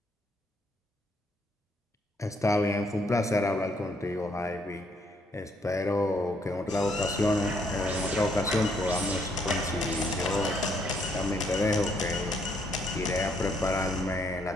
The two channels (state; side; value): normal; both; correlation 0.70